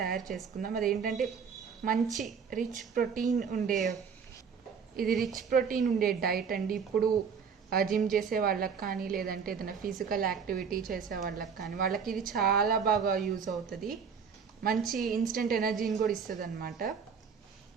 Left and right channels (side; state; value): left; quieter; 6.3 dB